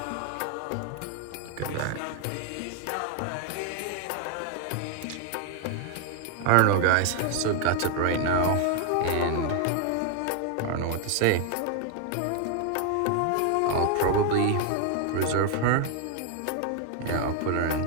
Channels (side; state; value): both; different; correlation 0.01